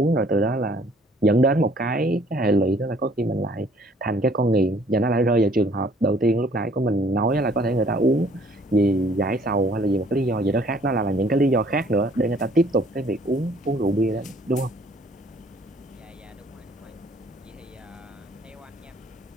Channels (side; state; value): both; normal; correlation 0.59